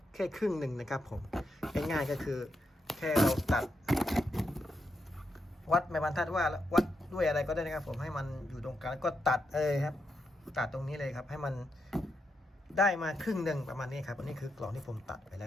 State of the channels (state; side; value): normal; both; correlation 0.83